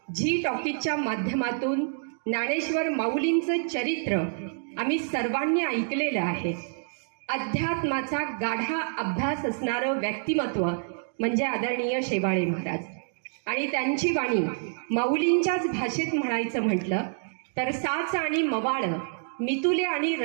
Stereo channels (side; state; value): left; silent; digital silence